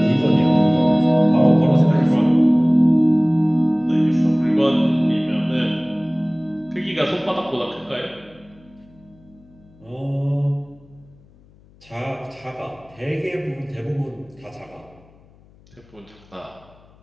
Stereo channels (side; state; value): left; noise; hum, 28 dB below the sound